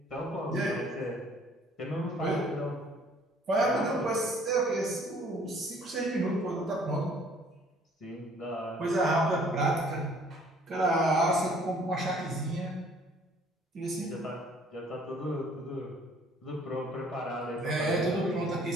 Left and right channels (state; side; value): normal; both; correlation 0.57